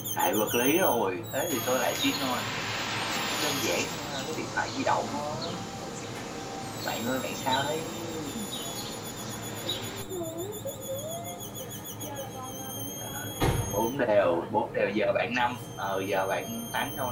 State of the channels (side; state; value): both; identical; correlation 1.00